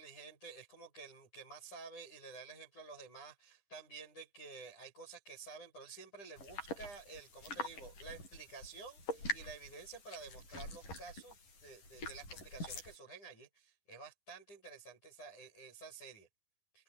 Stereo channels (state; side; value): late; right; 11 ms